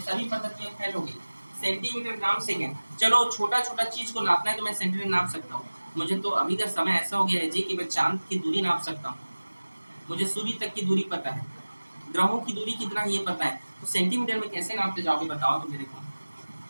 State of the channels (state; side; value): inverted; both; correlation -1.00